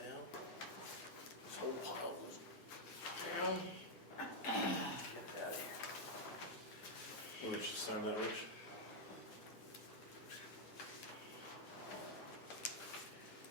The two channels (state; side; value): normal; both; correlation -0.02